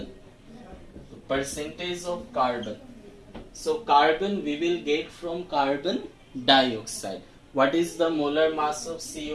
Percentage of carbon. So carbon we will get from carbon dioxide. What is the molar mass of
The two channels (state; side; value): identical; both; correlation 1.00